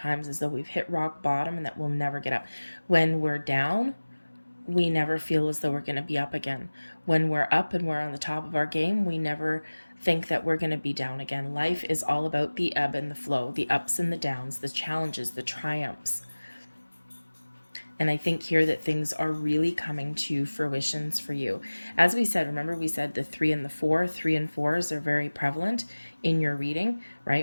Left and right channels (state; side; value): inverted; both; correlation -1.00